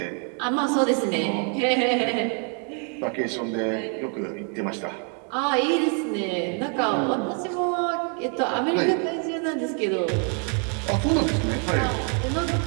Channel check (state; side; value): quieter; left; 39.6 dB